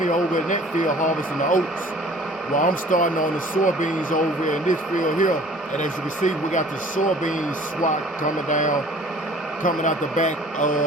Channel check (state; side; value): normal; both; correlation 0.50